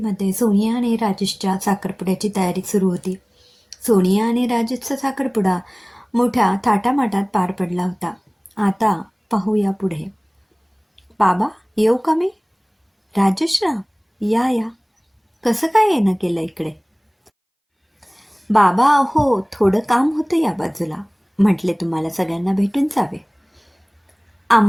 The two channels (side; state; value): both; identical; correlation 1.00